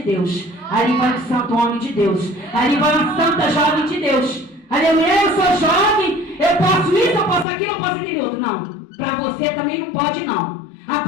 Deus. Ali vai um santo homem de Deus. Ali vai uma santa jovem de Deus. Aleluia, eu sou jovem, eu posso isso, eu posso aquilo, eu posso aquele outro. Não, para você também não pode, não. A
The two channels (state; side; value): drops out; right; at 7.5 s